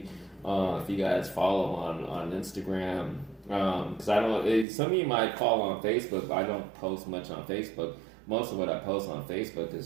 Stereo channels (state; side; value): drops out; left; at 4.7 s